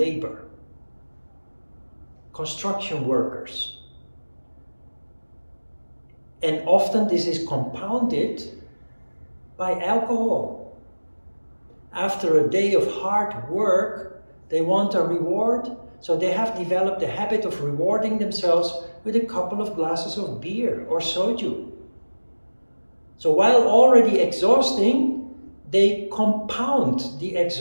Construction workers. And often this is compounded by alcohol. After a day of hard work, they want a reward, so they have developed the habit of rewarding themselves with a couple of glasses of beer or soju. So while already exhausting, they compound the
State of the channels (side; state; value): both; inverted; correlation -1.00